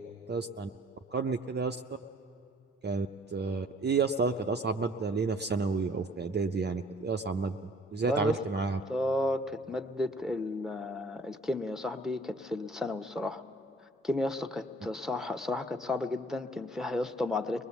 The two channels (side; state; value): both; normal; correlation 0.55